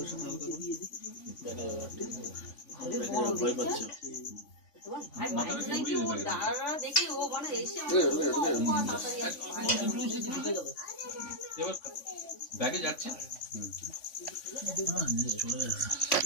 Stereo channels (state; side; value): late; right; 3.5 ms